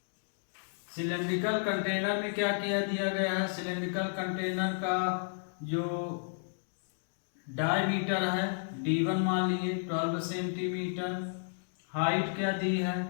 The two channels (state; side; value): silent; right; digital silence